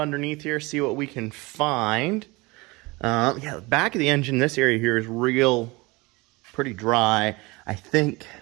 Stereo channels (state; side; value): quieter; left; 24.3 dB